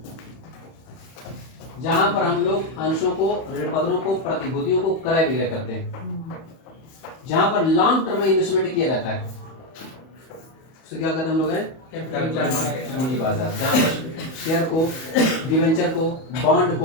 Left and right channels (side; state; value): right; late; 31 ms